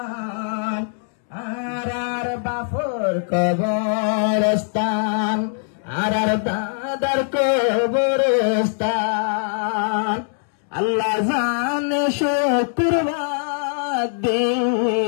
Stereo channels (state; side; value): silent; right; digital silence